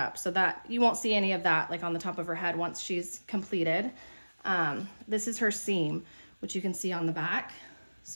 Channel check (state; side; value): inverted; both; correlation -1.00